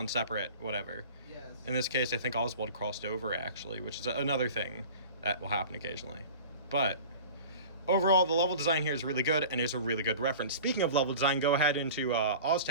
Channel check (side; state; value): both; inverted; correlation -0.39